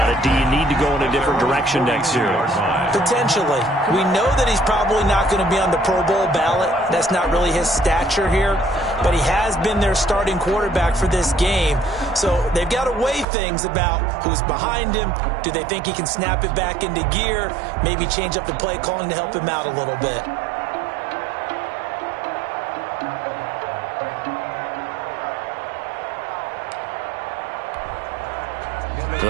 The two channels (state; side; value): drops out; left; at 13.2 s